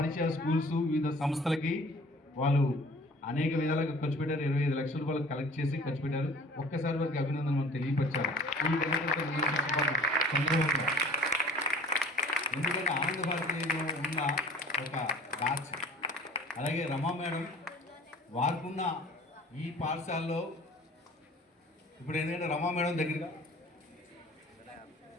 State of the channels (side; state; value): both; normal; correlation 0.48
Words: స్కూల్స్ వివిధ సంస్థలకి వాళ్ళు అనేక విధాలుగా ఖర్చు పెట్టారు. 25 లక్షల రూపాయలు కలెక్ట్ చేసి ఖర్చు పెట్టారు. ఒక్కసారి వారికి అభినందనలు తెలియపరిచారు. ఎందుకంటే ఆనంద భారతిలో ఉన్న ఒక బ్యాచ్, అలాగే రమా మేడం వారికున్న ఈ పాఠశాలలో ఇప్పుడు ఎందుకంటే రమా మేడం దగ్గరగా